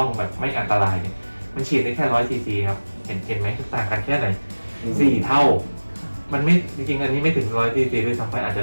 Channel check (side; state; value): both; inverted; correlation -1.00